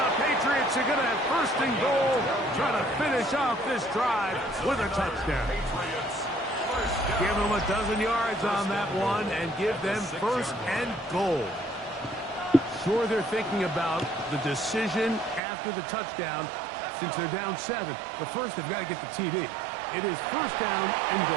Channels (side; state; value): left; drops out; at 15.4 s